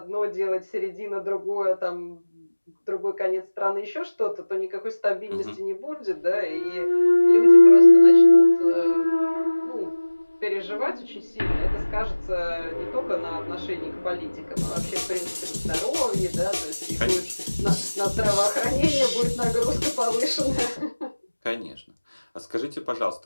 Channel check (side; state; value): both; inverted; correlation -1.00